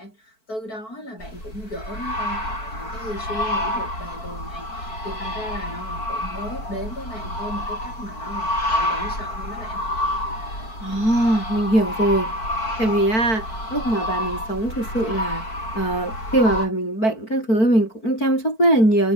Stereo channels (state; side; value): late; right; 4.5 ms